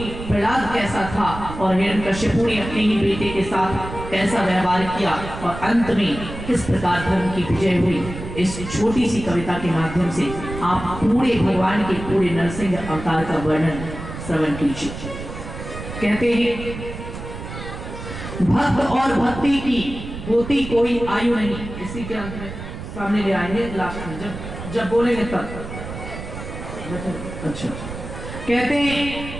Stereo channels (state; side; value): noise; right; rumble, 10 dB below the sound